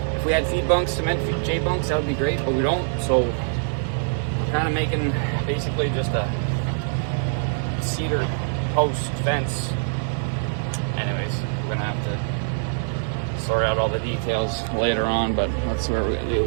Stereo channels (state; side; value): silent; left; digital silence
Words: If we had feed bunks, cement J bunks, that would be great, but we don't. So kind of making basically just a cedar post fence. Anyways, we're gonna have to sort out all the details later on, but that's what we're